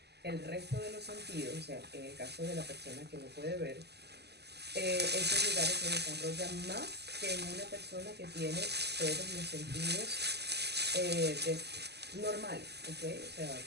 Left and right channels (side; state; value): left; late; 0.49 ms